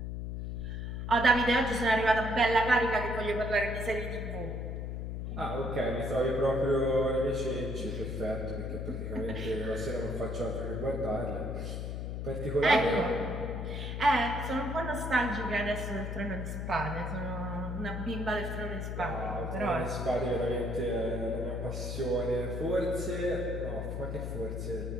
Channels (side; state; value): left; noise; hum, 4 dB below the sound